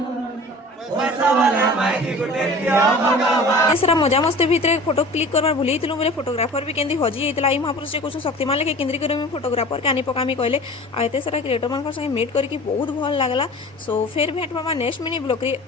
मजा मस्ती भितर फोटो क्लिक करवार भूल बोले फोटोग्राफर भी केंदी हजी होता। आई महापुरुष से कुछ शक्तिमान लेके केंद्री कर फोटोग्राफर के आनी पकामी कहले आते सारा क्रिएटर मान संगे मीट करके बहुत भल लगला। सो फिर भेट पाबा नेक्स्ट मिनी ब्लॉग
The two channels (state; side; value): normal; both; correlation 0.41